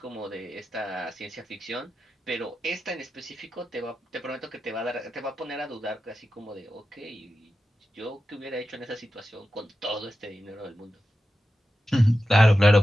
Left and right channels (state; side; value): normal; both; correlation 0.92